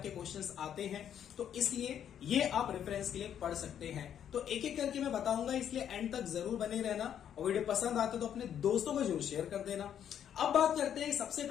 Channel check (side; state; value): right; quieter; 9.4 dB